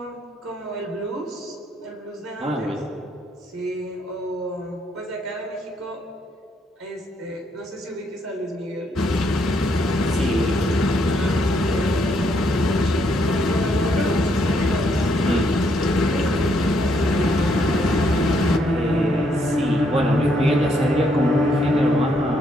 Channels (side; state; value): both; normal; correlation 0.73